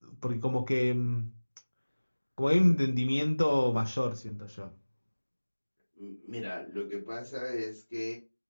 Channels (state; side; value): inverted; both; correlation -1.00